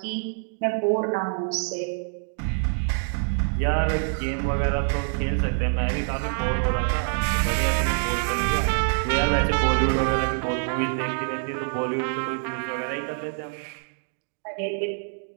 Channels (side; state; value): left; silent; 56 dB below the other